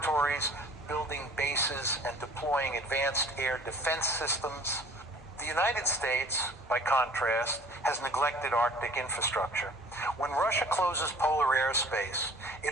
building bases and deploying advanced air defense systems. The United States, by contrast, has neglected Arctic infrastructure. When Russia closes polar airspace,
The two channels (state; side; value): normal; both; correlation 0.50